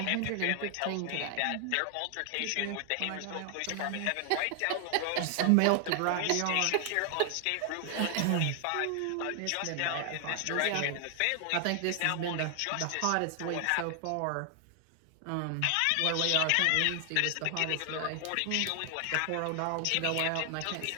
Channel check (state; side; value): different; both; correlation 0.00